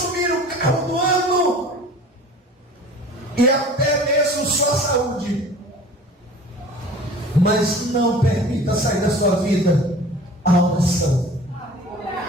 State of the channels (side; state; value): both; normal; correlation 0.44